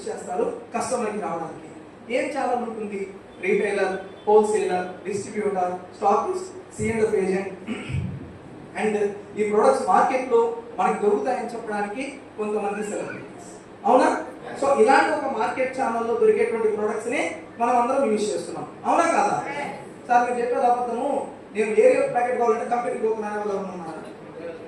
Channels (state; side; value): identical; both; correlation 1.00